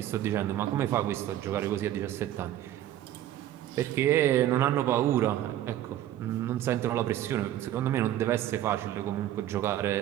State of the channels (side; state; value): left; quieter; 12.5 dB